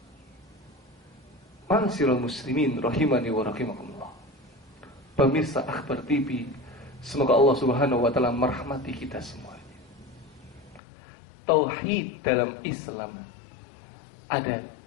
Ma'asyiral muslimin rahimani wa rahimakumullah. Pemirsa Akhbar TV, semoga Allah Subhanahu wa ta'ala merahmati kita semuanya. Tauhid dalam Islam ada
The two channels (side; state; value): right; drops out; at 10.8 s